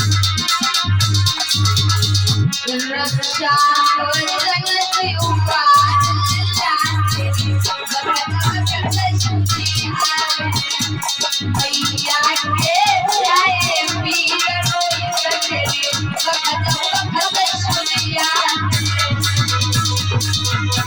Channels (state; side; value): identical; both; correlation 1.00